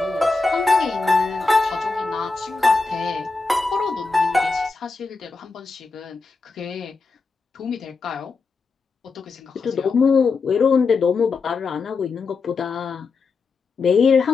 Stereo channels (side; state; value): right; quieter; 4.2 dB